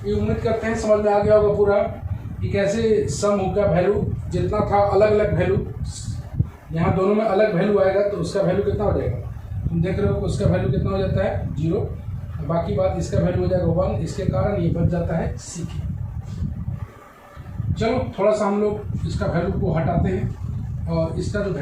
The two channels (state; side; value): identical; both; correlation 1.00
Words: ये उम्मीद करते हैं समझ में आ गया होगा पूरा कि कैसे सम का वैल्यू जितना था अलग अलग वैल्यू, यहाँ दोनों में अलग वैल्यू आएगा तो उसका वैल्यू कितना हो जाएगा, तुम देख रहे हो कि उसका वैल्यू कितना हो जाता है, 0। बाकी बात इसका वैल्यू हो जाएगा 1, इसके कारण ये बच जाता है सी के। चलो थोड़ा सा हम लोग इसका वैल्यू को हटाते हैं, और इसका जो